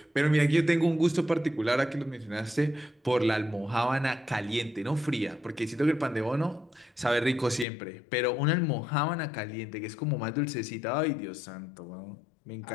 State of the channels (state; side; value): drops out; right; at 7.7 s